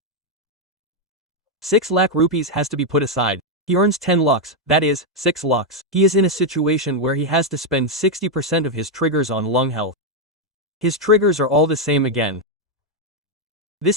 6 lakh rupees has to be put aside. He earns 10 lakhs, that is, 6 lakhs. He is in a situation where he has to spend 60% of his triggers on lung health. His triggers are all the same again.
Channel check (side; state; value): both; normal; correlation 0.01